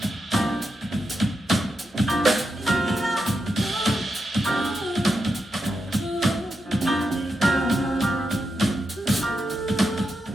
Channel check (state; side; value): normal; both; correlation 0.86